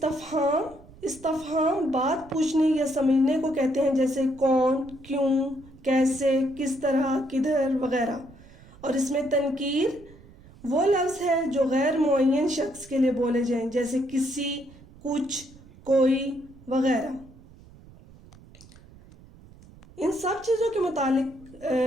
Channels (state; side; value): noise; right; rumble, 22 dB below the sound